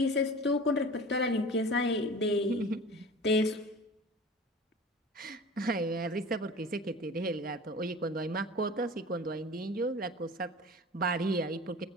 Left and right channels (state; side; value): normal; both; correlation 0.38